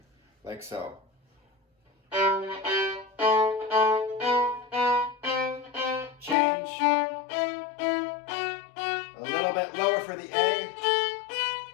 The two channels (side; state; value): right; drops out; at 6.4 s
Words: like so. Change. A little bit lower for the A.